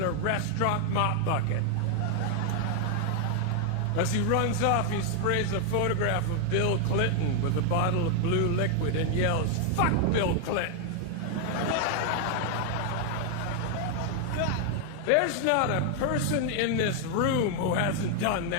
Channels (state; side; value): different; both; correlation 0.00